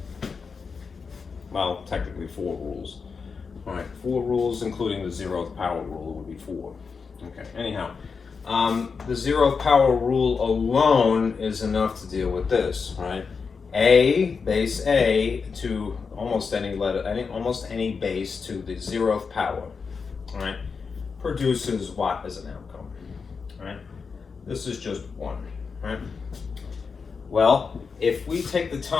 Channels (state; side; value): quieter; right; 5.3 dB